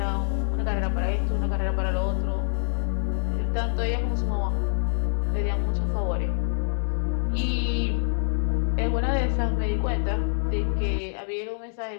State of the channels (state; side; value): silent; right; digital silence